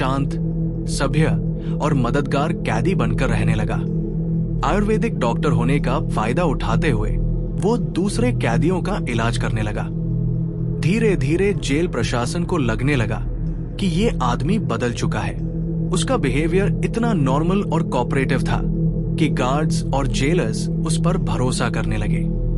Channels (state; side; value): identical; both; correlation 1.00